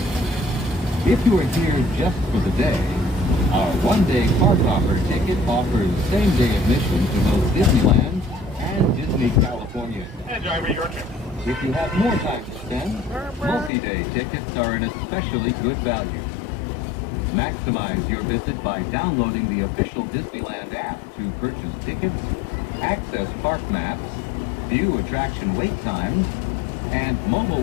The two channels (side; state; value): right; drops out; at 13.7 s